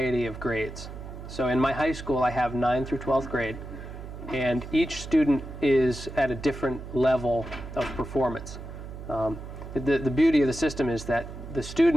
of grades. So in my high school I have 9th through 12th grade, and each student is at a different level of performance. The beauty of the system is that the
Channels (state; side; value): noise; right; hum, 11 dB below the sound